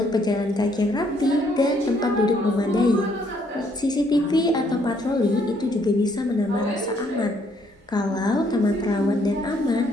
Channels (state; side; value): normal; both; correlation 0.68